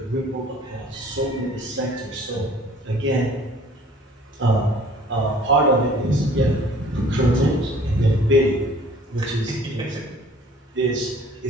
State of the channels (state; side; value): normal; both; correlation 0.53